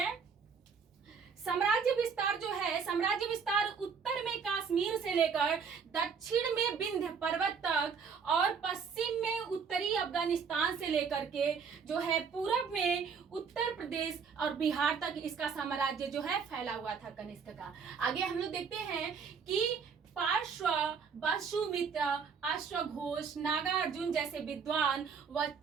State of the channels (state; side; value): quieter; left; 6.0 dB